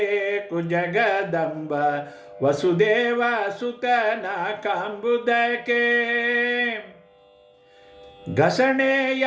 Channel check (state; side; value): identical; both; correlation 1.00